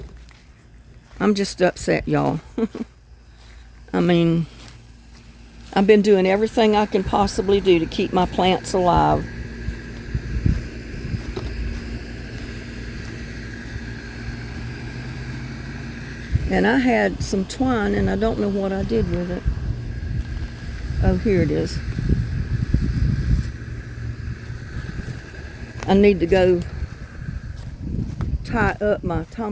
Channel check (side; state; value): both; identical; correlation 1.00